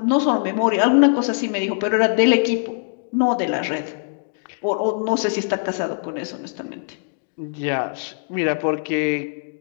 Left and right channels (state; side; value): silent; right; digital silence